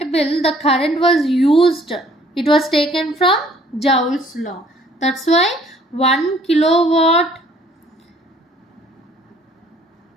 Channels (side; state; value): both; normal; correlation 0.59